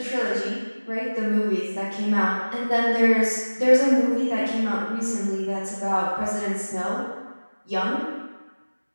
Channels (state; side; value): inverted; both; correlation -1.00